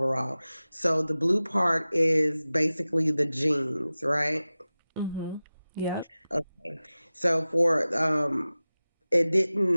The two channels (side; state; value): both; inverted; correlation -0.96